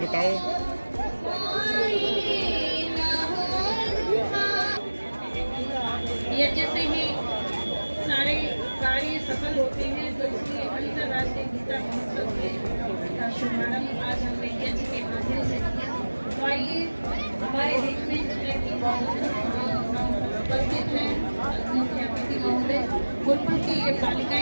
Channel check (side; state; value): both; inverted; correlation -1.00